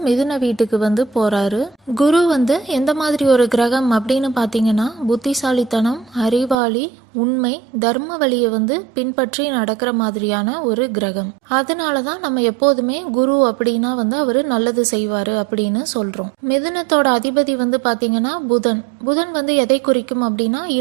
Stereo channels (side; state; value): left; drops out; at 6.6 s